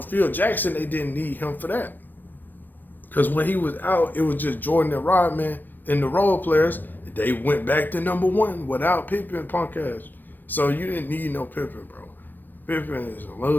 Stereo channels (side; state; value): right; late; 0.091 ms